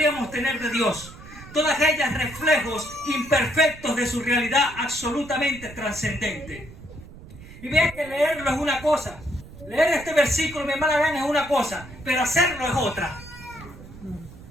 tener de Dios. Todas ellas reflejos imperfectos de su realidad absolutamente trascendente. Y vean que leerlo es una cosa. Leer este versículo, mi hermana Ana, es una cosa, pero hacerlo es otra.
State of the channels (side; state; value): right; noise; rumble, 17 dB below the sound